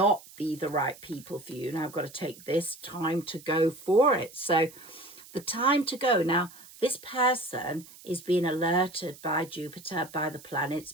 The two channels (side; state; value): right; noise; hiss, 20 dB below the sound